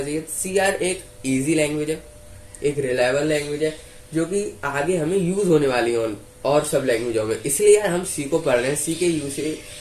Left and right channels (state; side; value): identical; both; correlation 1.00